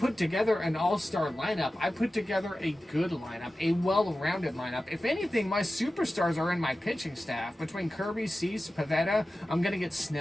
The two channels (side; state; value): both; normal; correlation 0.94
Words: together an all-star lineup. I put together a good lineup, a well-rounded lineup. If anything, my superstars are in my pitching staff. Between Kirby, Cease, Pivetta, I'm going to get